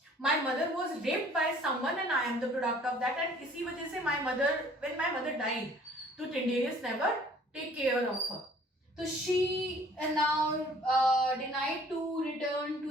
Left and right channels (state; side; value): normal; both; correlation 0.55